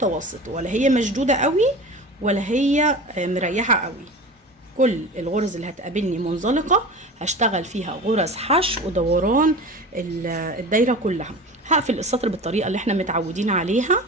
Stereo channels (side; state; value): both; normal; correlation 0.33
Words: ولا هي مشدوده قوي ولا هي مريحه قوي. كل الغرز اللي هتقابلني منزلقه هشتغل فيها غرز حشو ودوران الدايره كلها. هقفل السطر بالطريقه اللي احنا متعودين عليها.